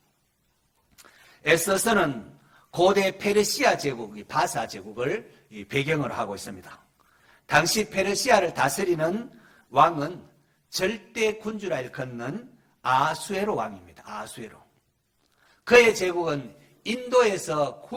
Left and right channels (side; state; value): both; identical; correlation 1.00